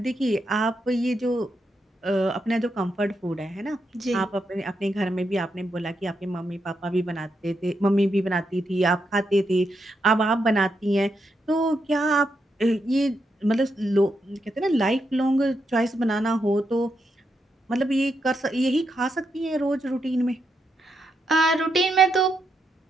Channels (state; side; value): normal; both; correlation 0.82